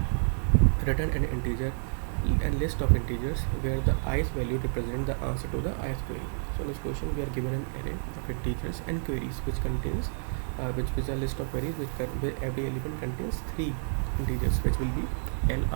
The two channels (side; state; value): left; silent; digital silence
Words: Return an integer and list of integers where the ith value represents the answer to the ith query. So in this question we are given an array of integers and queries which contains which is a list of queries where every element contains 3 integers which will be L,